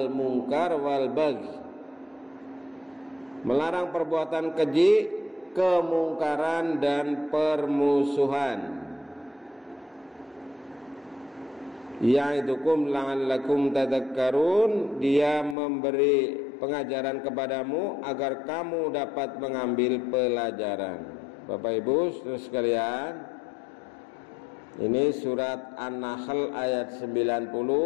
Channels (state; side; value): drops out; right; at 15.6 s